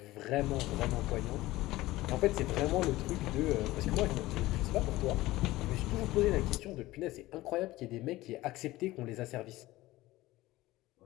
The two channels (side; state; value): right; quieter; 17.8 dB